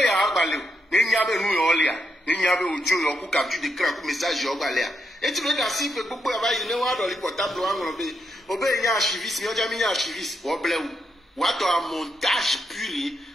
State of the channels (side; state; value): both; normal; correlation 0.81